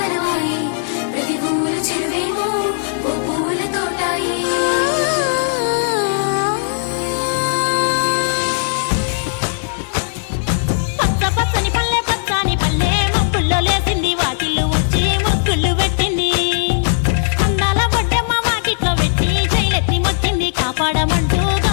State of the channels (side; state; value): right; silent; digital silence